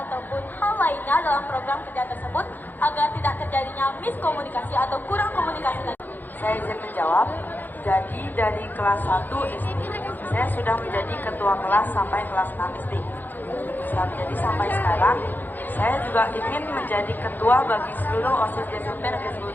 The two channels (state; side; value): late; right; 0.086 ms